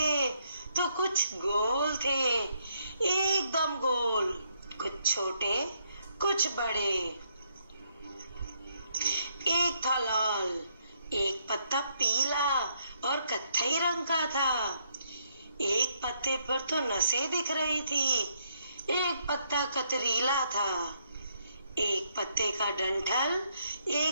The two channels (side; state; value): both; inverted; correlation -0.73